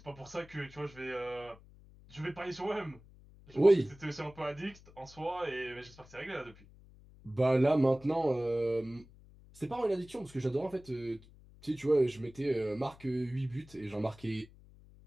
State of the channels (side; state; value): left; noise; hum, 23 dB below the sound